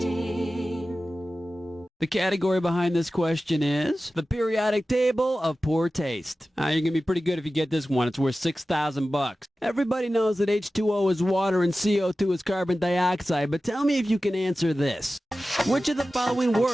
The category behind this question is the periodic table of poor taste. You're going to be pretty good if you get this one. It's worth $6,000. Everybody knows that H2O is water and CO2 is carbon dioxide, but tell me if you can answer this. Which of the following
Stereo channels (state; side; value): normal; both; correlation 0.95